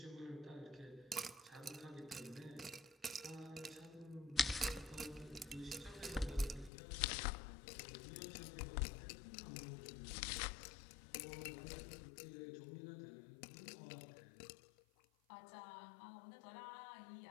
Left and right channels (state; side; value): drops out; right; at 6.7 s